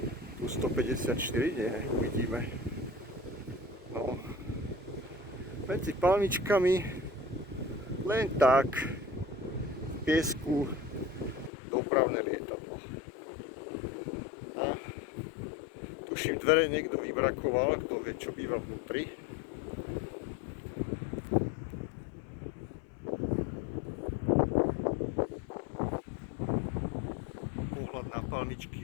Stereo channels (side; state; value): right; drops out; at 11.5 s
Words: Tu 154, nie, uvidíme. No. Medzi palmičkami len tak v piesku dopravné lietadlo. A tuším, dvere niekto vybrakoval, kto vie, čo býva vnútri. Pohľad na